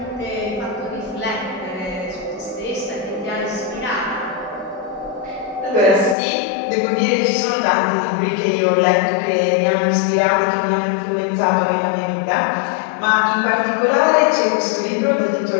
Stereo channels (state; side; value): drops out; right; at 6.2 s